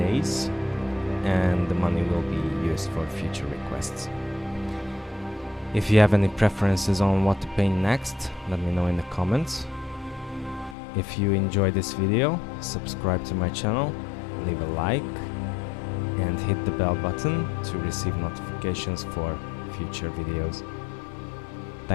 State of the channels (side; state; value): right; drops out; at 10.8 s